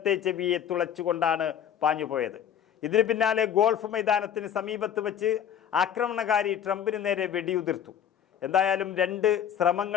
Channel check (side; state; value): right; quieter; 9.1 dB